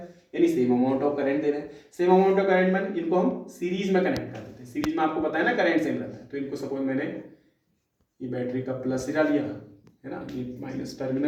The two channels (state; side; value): identical; both; correlation 1.00